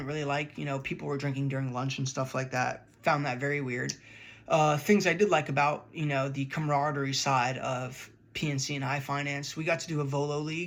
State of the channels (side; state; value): both; identical; correlation 1.00